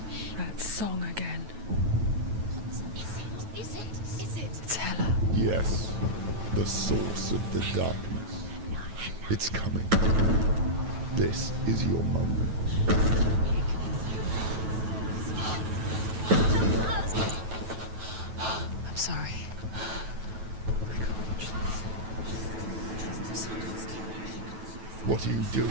That song again. Is it? It's Hela. Yes, the source of the darkness. It's coming. This is your moment. I'm sorry. I can't watch this. What are you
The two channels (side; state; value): left; late; 9.2 ms